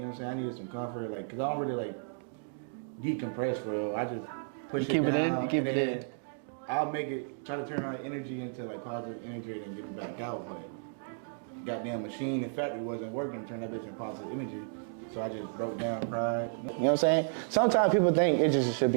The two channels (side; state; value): left; silent; digital silence